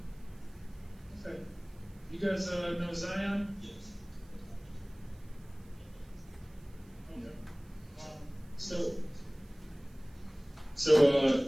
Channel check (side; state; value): right; noise; hiss, 30 dB below the sound